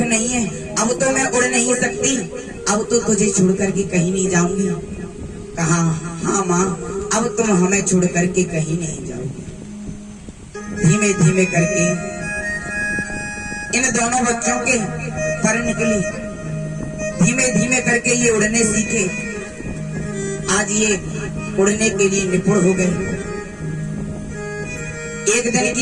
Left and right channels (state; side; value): identical; both; correlation 1.00